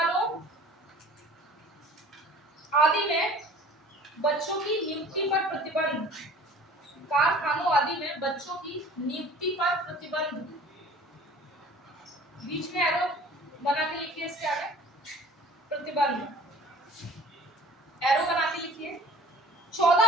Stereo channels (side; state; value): both; normal; correlation 0.48